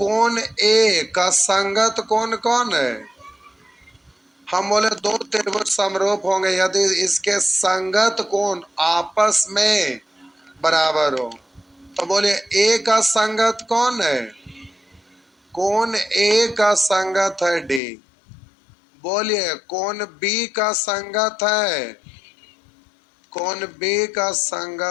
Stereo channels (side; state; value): right; drops out; at 17.8 s